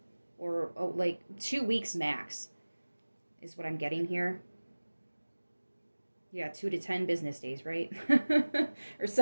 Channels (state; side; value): inverted; both; correlation -1.00